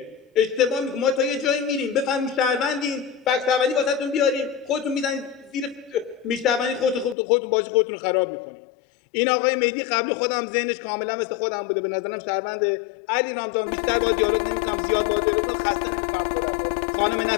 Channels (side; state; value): right; drops out; at 7.2 s